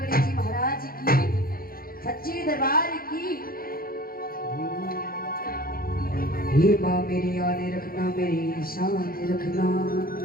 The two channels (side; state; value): right; late; 0.43 ms